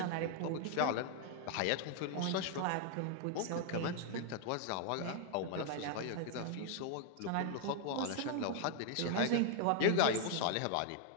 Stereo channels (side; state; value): both; different; correlation 0.00